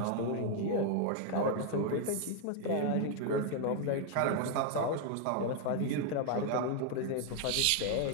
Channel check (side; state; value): both; different; correlation 0.00